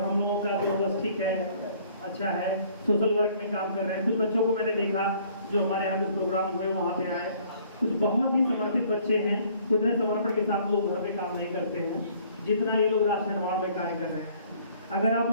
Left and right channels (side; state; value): both; inverted; correlation -0.58